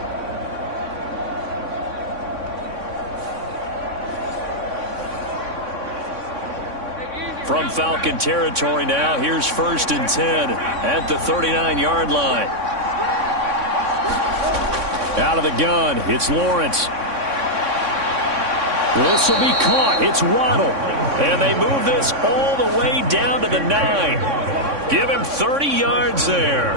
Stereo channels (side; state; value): left; late; 3.6 ms